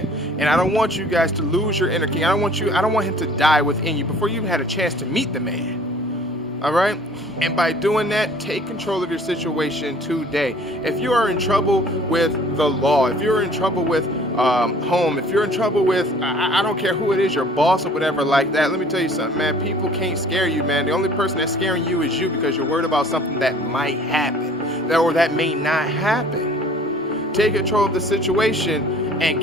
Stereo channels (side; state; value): both; normal; correlation 0.52